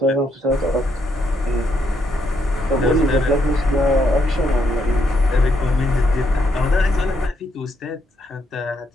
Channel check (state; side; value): normal; both; correlation 0.76